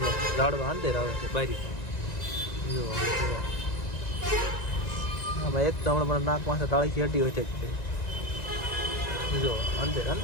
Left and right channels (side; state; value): right; late; 1.9 ms